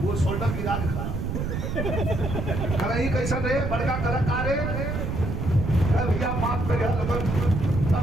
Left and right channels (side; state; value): right; noise; rumble, 3 dB below the sound